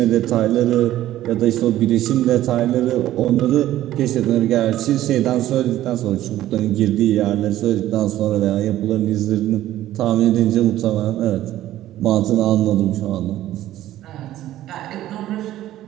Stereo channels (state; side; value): quieter; left; 13.8 dB